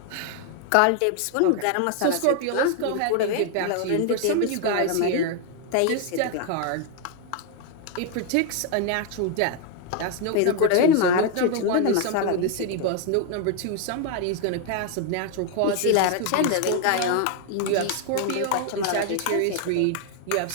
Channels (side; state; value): both; different; correlation 0.00